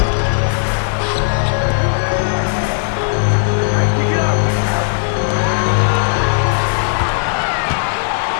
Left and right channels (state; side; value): silent; right; digital silence